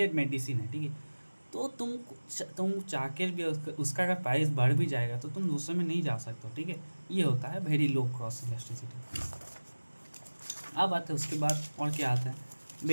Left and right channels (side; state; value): both; inverted; correlation -1.00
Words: मेडिसिन है, ठीक है, तो तुम चाह के भी उसका अगर प्राइस बढ़ भी जाएगा तो तुम दूसरे में नहीं जा सकते हो। ठीक है, ये होता है वेरी लो क्रॉस इलास्टिसिटी। अब आते हैं उसके बाद और क्या आता है,